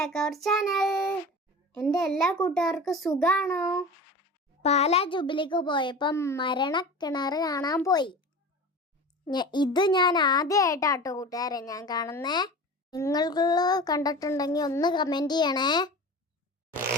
our channel. എൻ്റെ എല്ലാ കൂട്ടുകാർക്കും സുഖാണോ? പാലാ ജൂബിലിക്ക് പോയപ്പം മരണക്കിണർ കാണാൻ പോയി. ഇത് ഞാൻ ആദ്യമായിട്ടാട്ടോ കൂട്ടുകാരെ ഞാൻ കാണുന്നേ. നിങ്ങൾക്ക് കണ്ടിട്ടുണ്ടെങ്കിൽ ഒന്ന് കമൻറ്റ് ചെയ്യണേ.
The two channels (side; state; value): both; normal; correlation 0.34